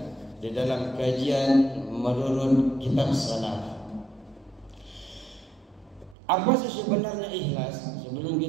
di dalam kajian menurut kitab salaf. Apa sih sebenarnya ikhlas? Sebelum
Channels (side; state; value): left; drops out; at 6.2 s